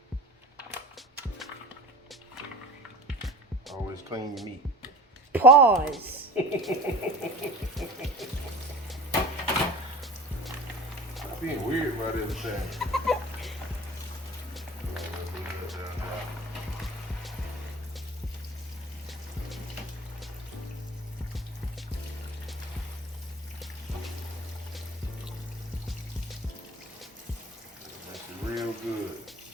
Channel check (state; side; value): normal; both; correlation 0.38